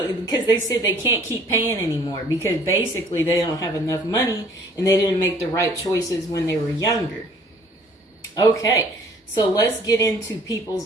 because they said they can't keep paying anymore because basically they don't have enough money and they didn't make the right choices when they were younger. Okay, so let's get into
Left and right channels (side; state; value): both; normal; correlation 0.56